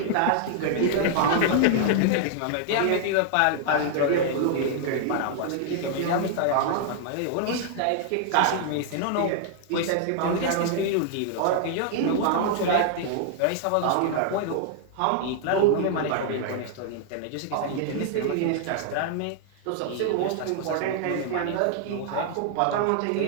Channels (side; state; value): both; different; correlation 0.00